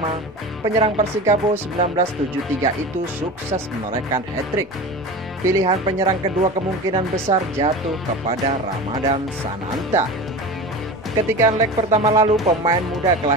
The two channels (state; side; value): normal; both; correlation 0.31